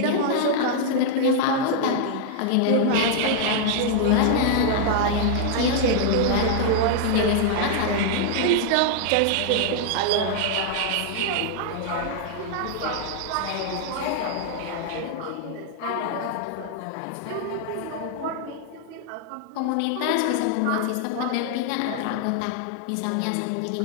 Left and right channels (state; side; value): different; both; correlation 0.00